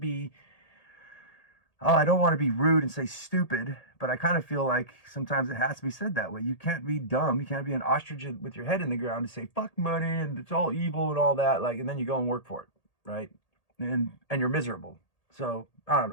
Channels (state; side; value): late; right; 1.8 ms